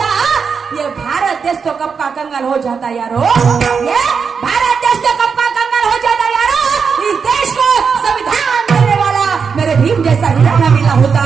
ये भारत देश तो कब का कंगाल हो जाता यारो, ये भारत देश तो कब का कंगाल हो जाता यारो. इस देश को संविधान देने वाला मेरे भीम जैसा हीरा ना मिला होता,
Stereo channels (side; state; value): left; quieter; 5.9 dB